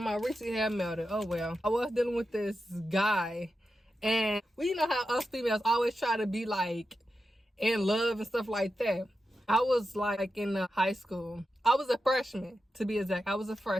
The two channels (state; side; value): normal; both; correlation 0.90